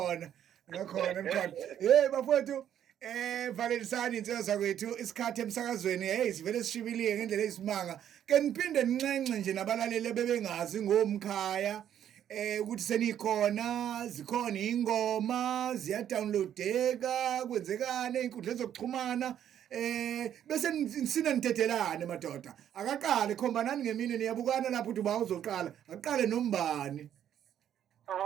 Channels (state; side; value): quieter; left; 10.1 dB